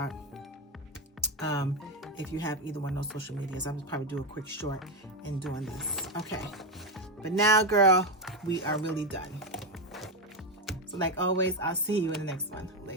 If you have either one of those social medias, I'm just probably do a quick short in doing this. Okay. But now, girl, we are really done. So like always, I'll see you in the next one.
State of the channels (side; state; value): both; normal; correlation 0.09